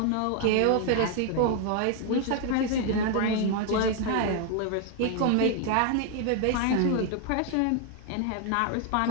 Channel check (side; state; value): both; different; correlation 0.00